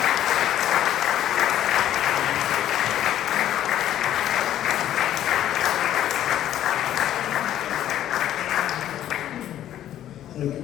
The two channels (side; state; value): right; quieter; 11.8 dB